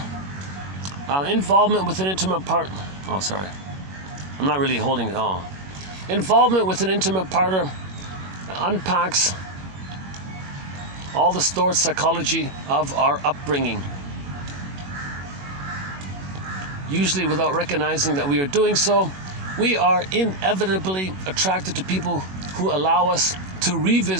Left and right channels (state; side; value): late; left; 21 ms